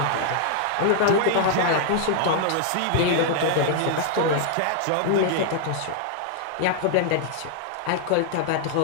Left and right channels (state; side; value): different; both; correlation 0.00